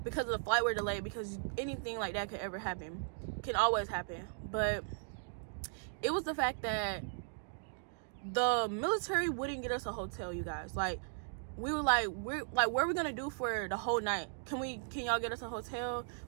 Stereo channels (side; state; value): left; silent; digital silence